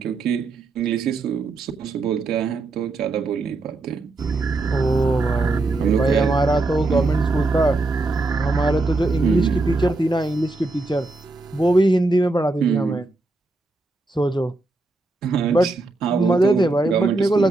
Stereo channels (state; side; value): quieter; left; 3.1 dB